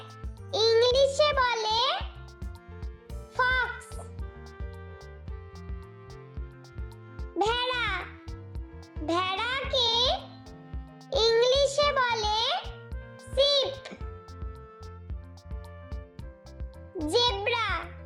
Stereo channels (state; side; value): identical; both; correlation 1.00